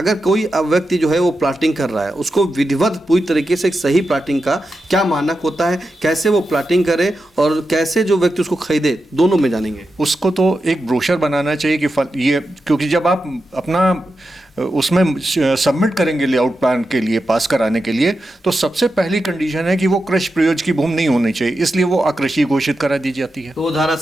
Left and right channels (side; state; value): both; normal; correlation 0.89